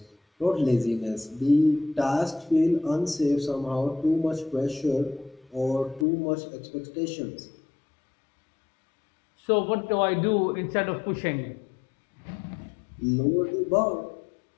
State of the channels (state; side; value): drops out; right; at 6.1 s